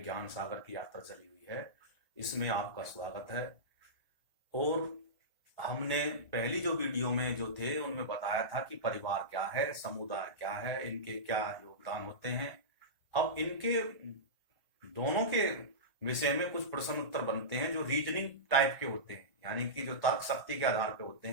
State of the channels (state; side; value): late; left; 1.0 ms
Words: सागर की यात्रा चली हुई है, इसमें आपका स्वागत है। और हमने पहली जो वीडियो में जो थे उनमें बताया था कि परिवार क्या है, समुदाय क्या है, इनके क्या योगदान होते हैं। अब इनके दोनों के विषय में कुछ प्रश्न उत्तर बनते हैं जो रीजनिंग टाइप के होते हैं, यानी कि जो तर्क शक्ति के आधार पे होते